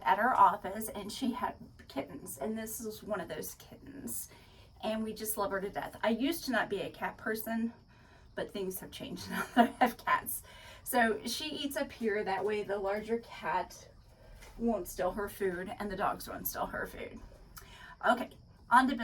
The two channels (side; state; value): both; identical; correlation 1.00